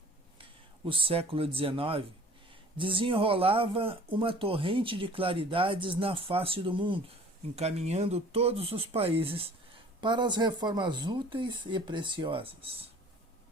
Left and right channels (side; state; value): both; normal; correlation 0.49